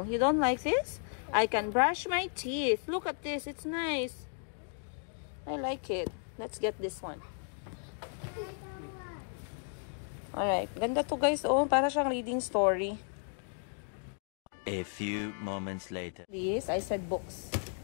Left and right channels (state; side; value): silent; right; 55 dB below the other